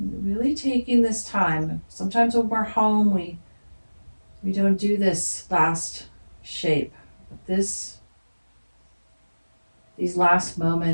really taking this time. Sometimes when we're home, we don't do this last shape. But these last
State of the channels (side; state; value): both; inverted; correlation -1.00